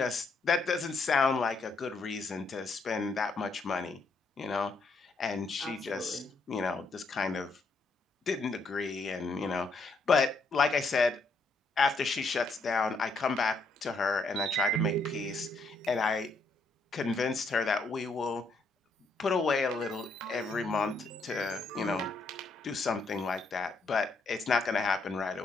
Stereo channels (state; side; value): quieter; right; 3.5 dB